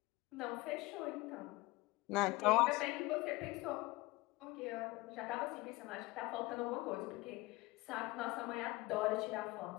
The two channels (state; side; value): quieter; right; 21.7 dB